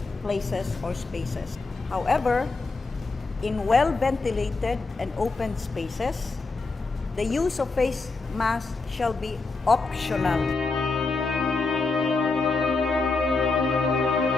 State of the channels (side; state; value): right; quieter; 3.8 dB